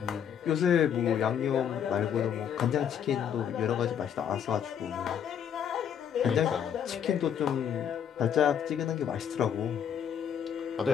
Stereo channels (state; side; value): quieter; right; 8.6 dB